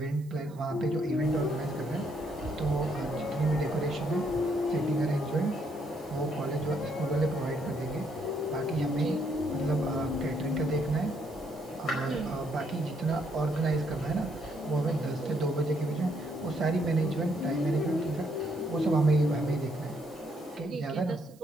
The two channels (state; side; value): noise; right; hiss, 28 dB below the sound